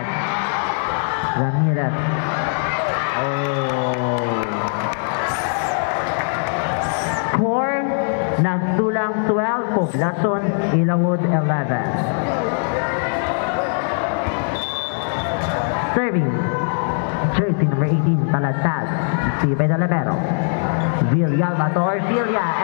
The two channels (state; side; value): silent; right; 65 dB below the other